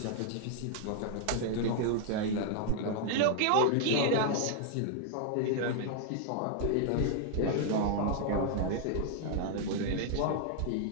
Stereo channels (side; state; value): both; different; correlation 0.00